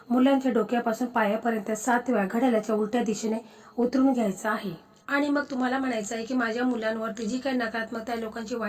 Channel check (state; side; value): identical; both; correlation 1.00